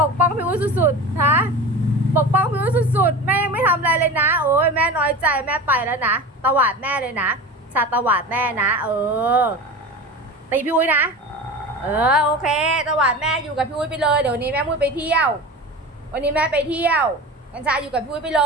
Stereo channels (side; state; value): both; normal; correlation 0.31